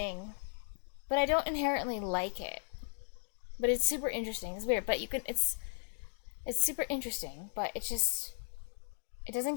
but I don't inherently like it. But it's super interesting. It's weird, but it's super interesting, but it doesn't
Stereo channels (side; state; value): right; silent; digital silence